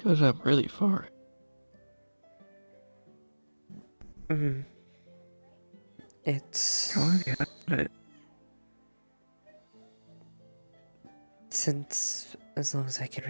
goes up really far. It's... How long have you had it? Since as long as I can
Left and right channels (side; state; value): both; inverted; correlation -1.00